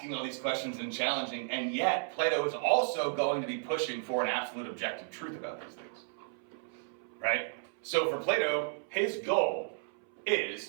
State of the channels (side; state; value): left; silent; 56 dB below the other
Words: all these questions and challenging, and yet Plato is also going to be pushing for an absolute objective truth about these things, right? So for Plato, his goal